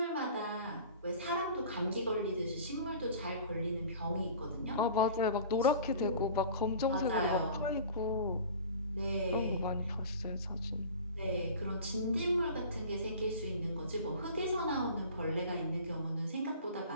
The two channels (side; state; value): both; inverted; correlation -0.41